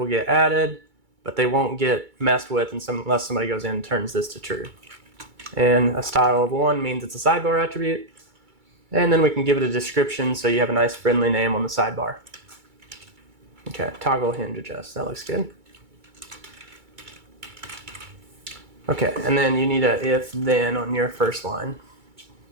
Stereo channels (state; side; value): late; left; 2.3 ms